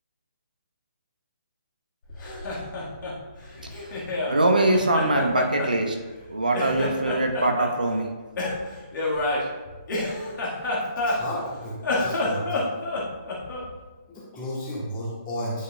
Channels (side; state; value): both; inverted; correlation -0.61